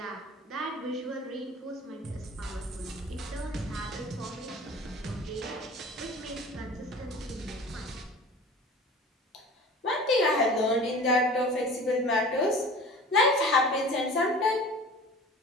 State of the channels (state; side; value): normal; both; correlation 0.41